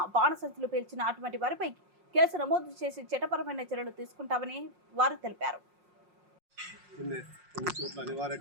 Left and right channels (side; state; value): left; late; 5.6 ms